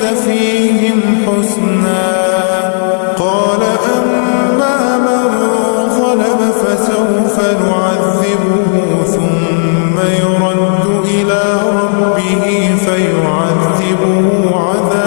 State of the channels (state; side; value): silent; right; digital silence